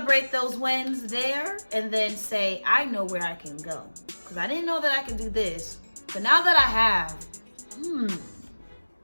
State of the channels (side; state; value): both; inverted; correlation -1.00